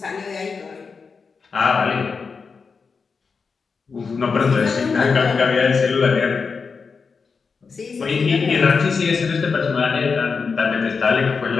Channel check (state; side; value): quieter; right; 5.1 dB